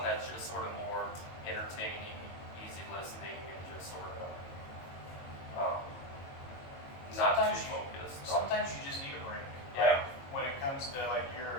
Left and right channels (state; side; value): late; right; 22 ms